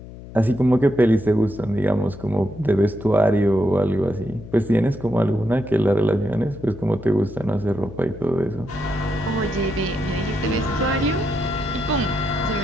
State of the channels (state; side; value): noise; left; hum, 15 dB below the sound